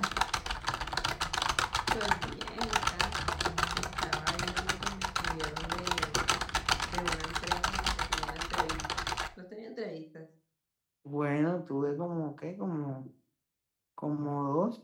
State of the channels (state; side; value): identical; both; correlation 1.00